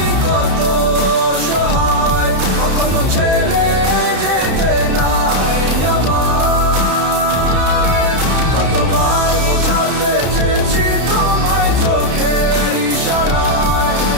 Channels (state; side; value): late; left; 32 ms